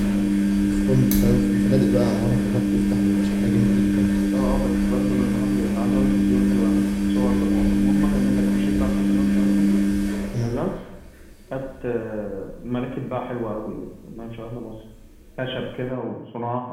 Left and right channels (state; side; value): identical; both; correlation 1.00